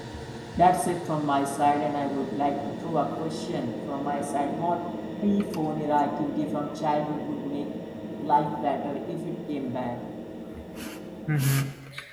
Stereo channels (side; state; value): both; identical; correlation 1.00